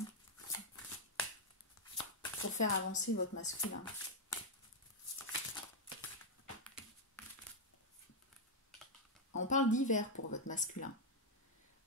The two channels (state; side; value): normal; both; correlation -0.01